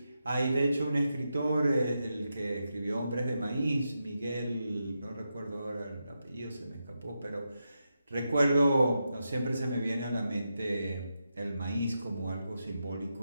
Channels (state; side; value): inverted; both; correlation -0.87